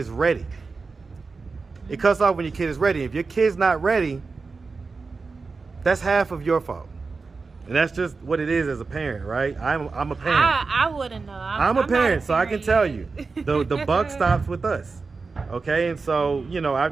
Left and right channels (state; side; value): quieter; left; 4.3 dB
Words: ready. It cuts off when your kid is ready. If your kid's not ready, that's half of your fault. And that's just what it is as a parent, right? I'm a parent. I wouldn't know. I'm a parent, so I can tell you, the buck stops with us. Okay, and so, you know,